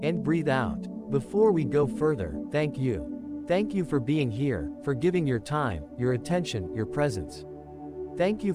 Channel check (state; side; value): identical; both; correlation 1.00